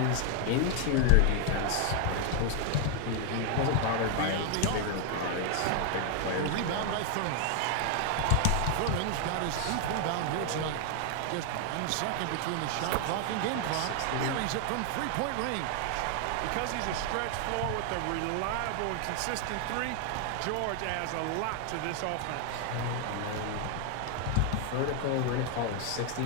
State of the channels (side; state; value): both; different; correlation 0.00